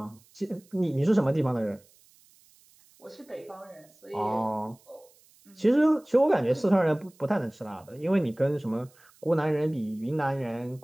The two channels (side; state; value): right; noise; hiss, 30 dB below the sound